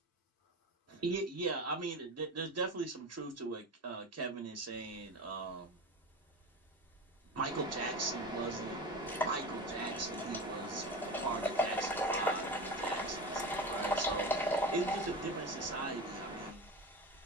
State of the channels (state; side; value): normal; both; correlation 0.27